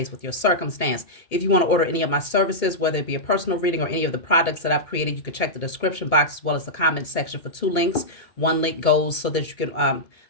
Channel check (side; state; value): right; late; 2.2 ms